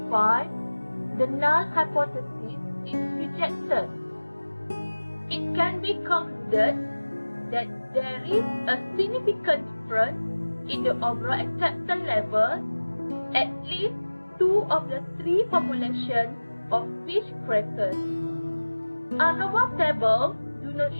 the null hypothesis is rejected. It can be concluded that there is a significant difference in the overall acceptance level at least 2 of the 3 formulations of fish crackers. ANOVA table do not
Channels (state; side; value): inverted; both; correlation -1.00